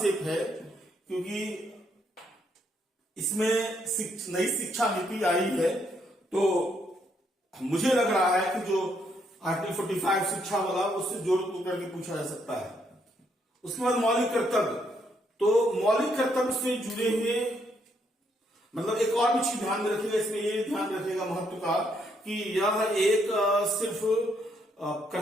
है, क्योंकि इसमें नई शिक्षा नीति आई है, तो मुझे लग रहा है कि जो आर्टिकल 45 शिक्षा वाला, उससे जोड़ करके पूछा जा सकता है। उसके बाद मौलिक कर्तव्य, तो मौलिक कर्तव्य से जुड़े हुए मतलब एक और भी चीज ध्यान में रखिएगा, इसमें ये ध्यान रखिएगा महत्व का, कि यह एक सिर्फ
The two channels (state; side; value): normal; both; correlation 0.74